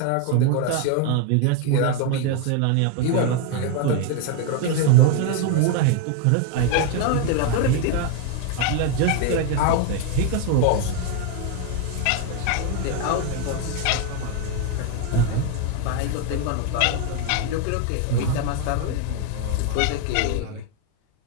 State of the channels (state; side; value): different; both; correlation 0.01